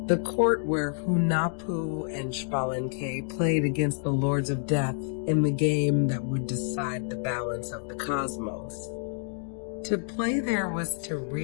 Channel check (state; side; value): silent; right; digital silence